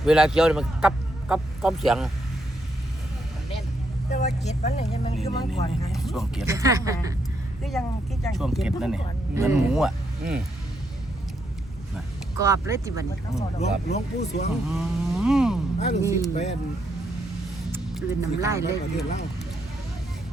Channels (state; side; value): normal; both; correlation 0.77